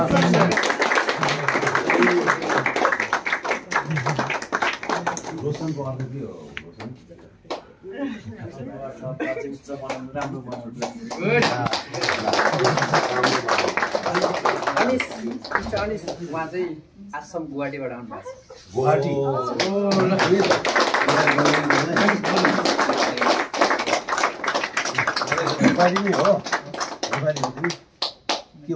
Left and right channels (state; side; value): identical; both; correlation 1.00